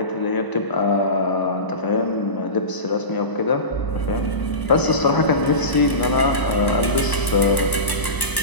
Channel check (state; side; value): late; right; 1.0 ms